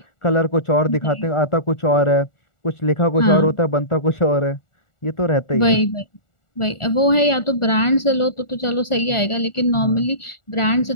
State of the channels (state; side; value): late; right; 1.4 ms